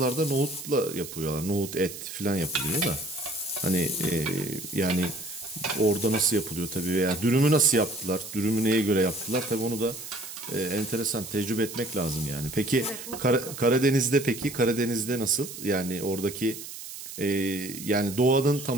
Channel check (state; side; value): noise; right; hiss, 11 dB below the sound